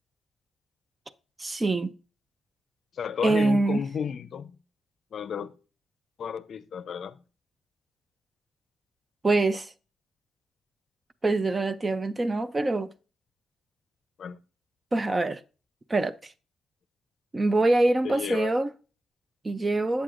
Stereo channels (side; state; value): both; normal; correlation 0.92